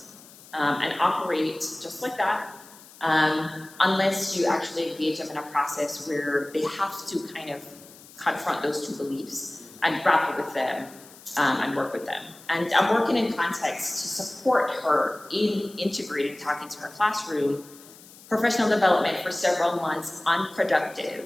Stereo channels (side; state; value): left; noise; hiss, 21 dB below the sound